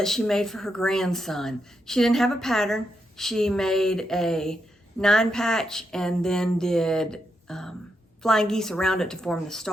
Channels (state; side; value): normal; both; correlation 0.82